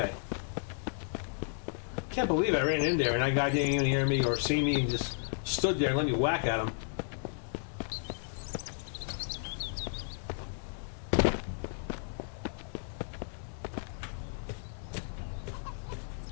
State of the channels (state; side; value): silent; right; digital silence